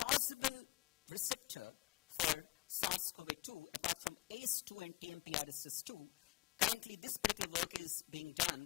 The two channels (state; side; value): quieter; right; 20.2 dB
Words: receptor for SARS-CoV-2, apart from ACE2 and TMPRSS2. Currently, this particular work is being